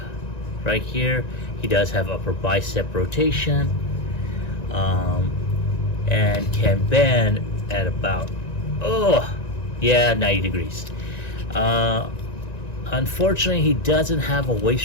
right here. He does have upper bicep rotation, and can bend at about 90 degrees. Unfortunately, he doesn't have a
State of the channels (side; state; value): right; late; 1.9 ms